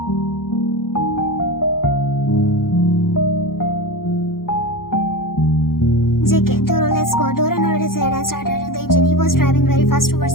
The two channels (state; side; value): late; right; 0.92 ms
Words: JK, Doro, let's go. Doro nodded his head and started the engine. He was driving very fast